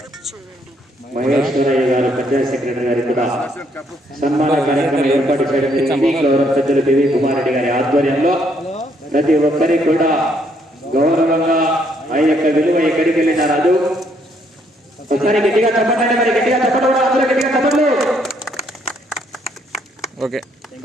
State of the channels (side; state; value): both; normal; correlation 0.70